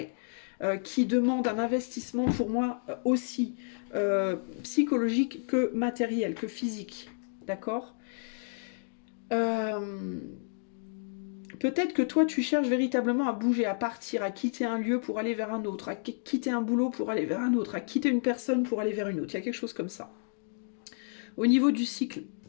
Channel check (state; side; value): silent; right; digital silence